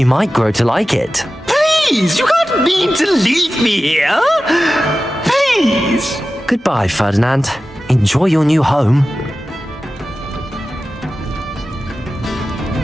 might grow to like it. Please, you can't mean to leave me here. Please. Goodbye, Ferdinand. Enjoy your new home.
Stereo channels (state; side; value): normal; both; correlation 0.94